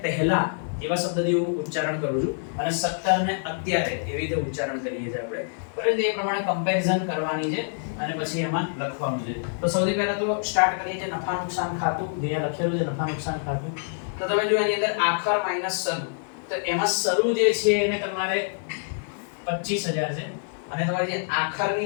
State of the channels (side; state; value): right; silent; digital silence